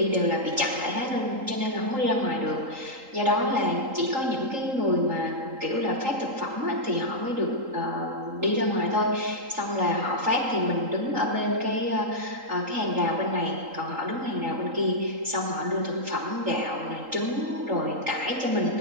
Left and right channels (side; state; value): left; late; 3.8 ms